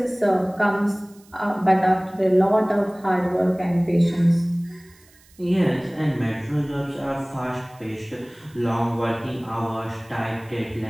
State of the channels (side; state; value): right; noise; hiss, 28 dB below the sound